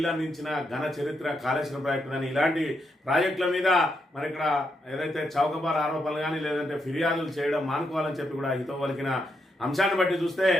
ఘన చరిత్ర కాళేశ్వరం ప్రాజెక్టు కానీ ఇలాంటి ప్రాజెక్టుల మీద మరి ఇక్కడ ఏదైతే చౌకబార్ ఆరోపణలు కానీ లేదంటే ఫిర్యాదులు చేయడం మానుకోవాలని చెప్పి కూడా హితవు పలికిన అంశాన్ని బట్టి చూస్తే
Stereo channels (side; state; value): both; normal; correlation 0.81